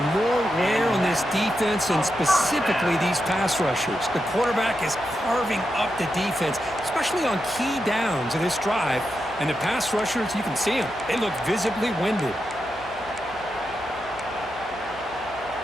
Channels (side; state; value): left; noise; hum, 22 dB below the sound